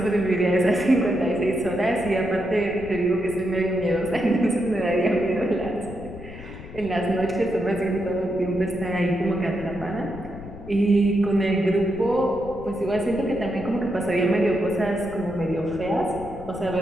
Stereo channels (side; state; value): left; noise; rumble, 14 dB below the sound